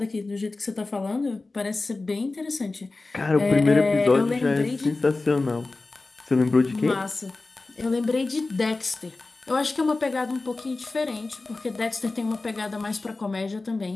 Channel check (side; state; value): right; quieter; 3.4 dB